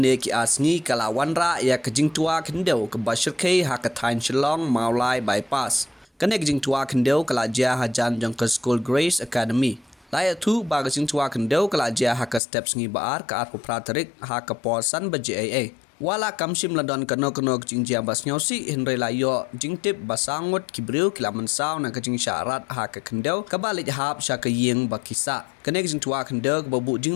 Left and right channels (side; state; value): right; drops out; at 12.4 s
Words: ki asngi kala wanra ya ka Jingtwa Khyndew ke Bashirkei ha ka tain Shillong Mawlai bypass. Kene ka Jingtwa Khyndew kala jia hajan jong ke School Grace Academy. Laya tu ba ka Jingtwa Khyndew kala jia ha ka steps ngi baar ka arpu pratarik ha ka polsan ba JAA. Wala kamsim ladon kano jingjia bas nyausi hinre layo jingtip basangut kibriu kilaman saw na kajing syarat ha ka Khyndew kabalik hap sya ka ying bakisa. Kene Jingtwa Khyndew babu